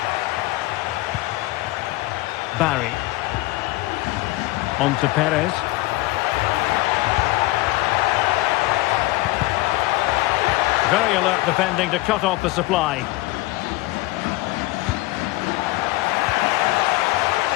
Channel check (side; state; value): right; quieter; 19.6 dB